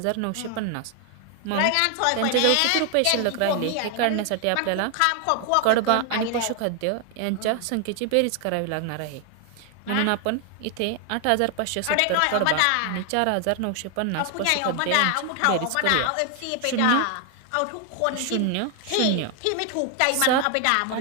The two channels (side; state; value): both; different; correlation 0.00